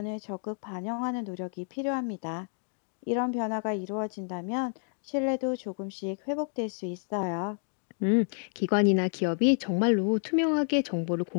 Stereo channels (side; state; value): right; silent; 58 dB below the other